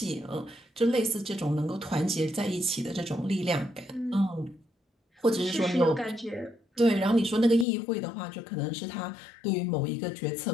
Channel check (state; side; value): drops out; right; at 7.7 s